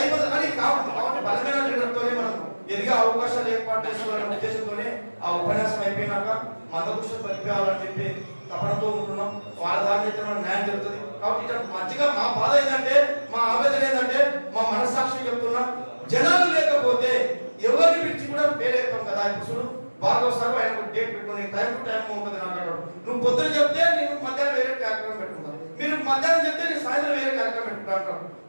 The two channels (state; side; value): inverted; both; correlation -1.00